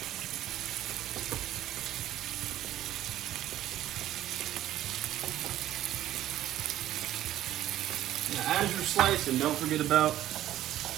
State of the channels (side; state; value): left; quieter; 13.2 dB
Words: now as you're slicing, don't forget about